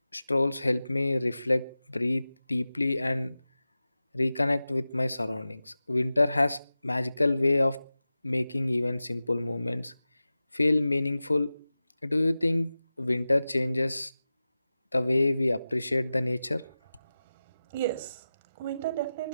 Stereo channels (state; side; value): inverted; both; correlation -0.95